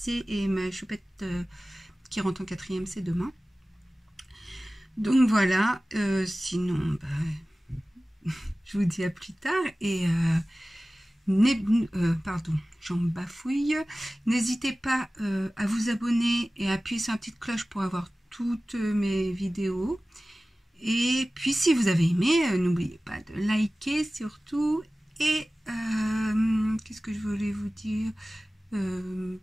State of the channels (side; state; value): both; normal; correlation 0.97